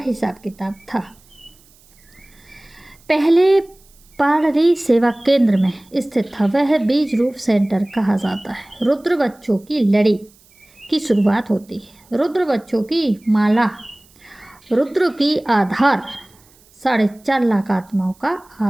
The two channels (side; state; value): right; noise; hiss, 30 dB below the sound